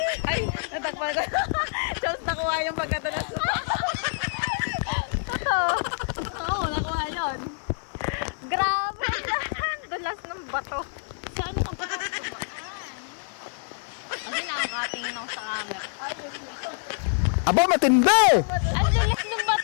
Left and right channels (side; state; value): right; silent; digital silence